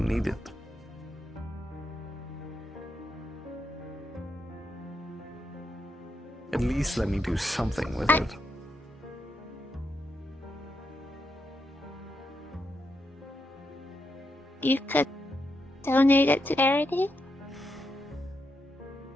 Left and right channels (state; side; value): normal; both; correlation 0.82